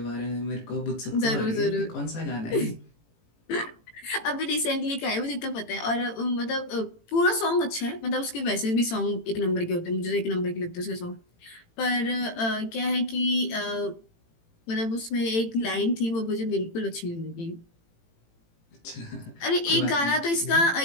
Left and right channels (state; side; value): late; right; 18 ms